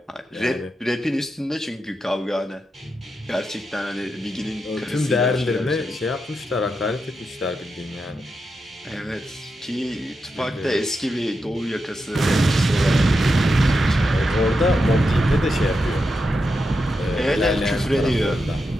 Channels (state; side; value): normal; both; correlation 0.86